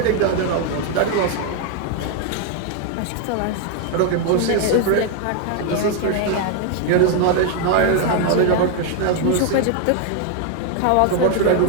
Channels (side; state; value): both; different; correlation 0.00